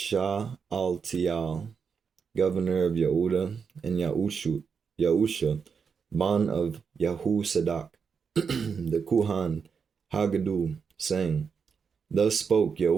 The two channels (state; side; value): quieter; left; 6.0 dB